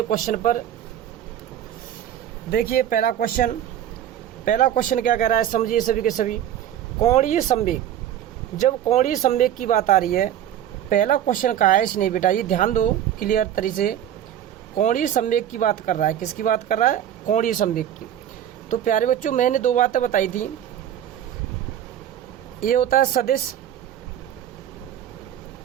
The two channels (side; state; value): left; quieter; 10.8 dB